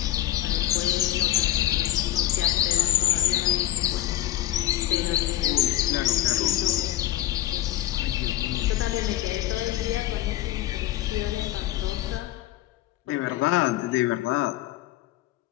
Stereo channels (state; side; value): quieter; right; 13.7 dB